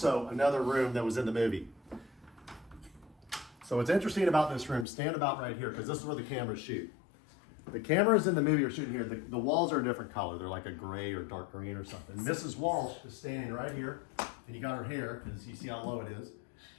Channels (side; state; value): right; drops out; at 4.9 s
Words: another room that was in the movie. So what's interesting about this room, stand about right here, because this is where the cameras shoot. The cameras in the movie are shooting here. The walls are a different color. They're like a gray or dark green or something. Mrs. Walsh is standing right here, and you got her hair, because you see how low it is.